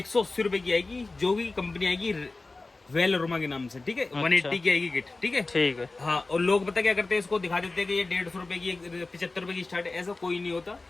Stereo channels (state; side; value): quieter; right; 3.4 dB